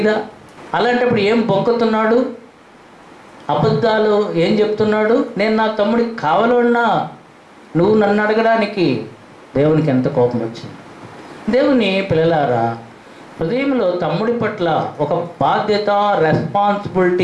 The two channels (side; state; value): both; identical; correlation 1.00